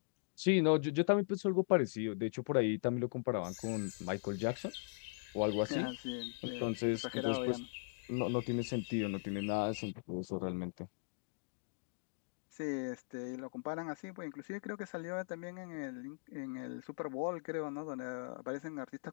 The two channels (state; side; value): silent; right; digital silence